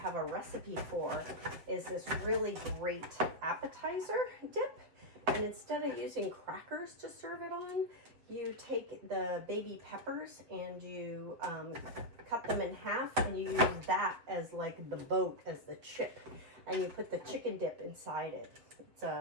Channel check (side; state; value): left; late; 7.6 ms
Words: a recipe for is this really great appetizer dip. And instead of using crackers to serve it on, you take the baby peppers and you cut them in half, and you use that as like the boat, as the chip. And you put the chicken dip inside it. It's